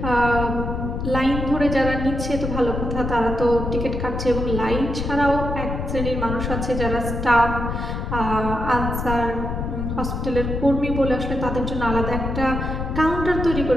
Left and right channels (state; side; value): noise; left; rumble, 3 dB below the sound